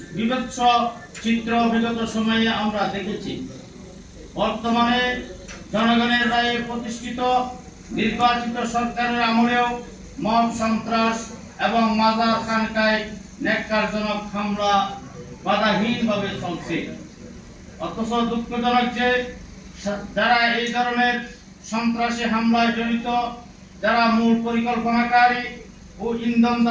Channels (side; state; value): both; identical; correlation 1.00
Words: বিভৎস চিত্র বিগত সময়ে আমরা দেখেছি। বর্তমানে জনগণের রায়ে প্রতিষ্ঠিত নির্বাচিত সরকারের আমলেও মব সন্ত্রাস এবং মাজার খানকায় ন্যাক্কারজনক হামলা বাধাহীনভাবে চলছে। অথচ দুঃখজনক যে যারা এই ধরনের সন্ত্রাসী হামলায় জড়িত, যারা মূল পরিকল্পনাকারী ও